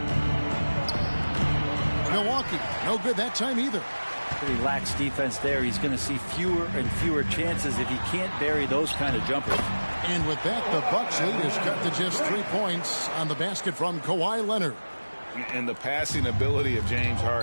Milwaukee, no good that time either. Pretty lax defense there. He's going to see fewer and fewer chances if he can't bury those kind of jumpers. And with that, the Bucks lead is cut to just 3 points on the basket from Kawhi Leonard. And the passing ability of James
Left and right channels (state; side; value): inverted; both; correlation -1.00